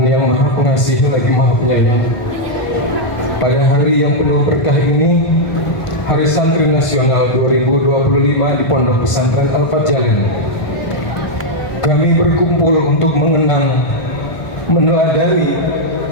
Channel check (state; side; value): late; right; 1.5 ms